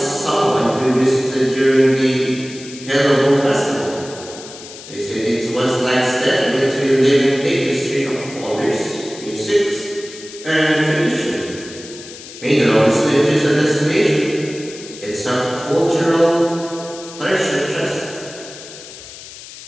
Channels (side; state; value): left; noise; hiss, 15 dB below the sound